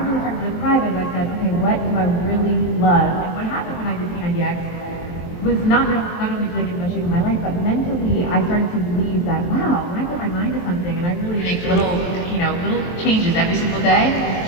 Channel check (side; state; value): right; late; 23 ms